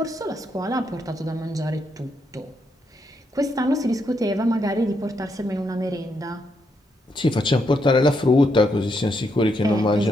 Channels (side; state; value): both; normal; correlation 0.79